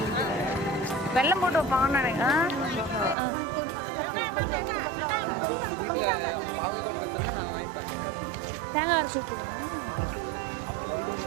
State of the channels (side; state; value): left; drops out; at 3.2 s